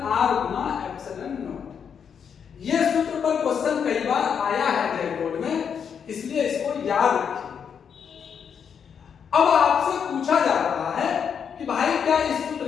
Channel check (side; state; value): right; quieter; 7.3 dB